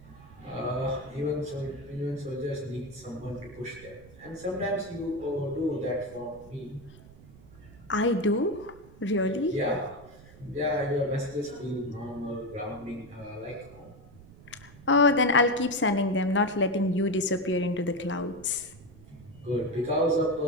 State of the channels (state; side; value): noise; right; rumble, 20 dB below the sound